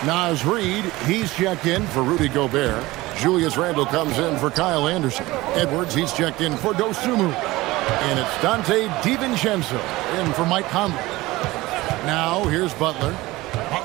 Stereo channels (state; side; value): quieter; left; 19.4 dB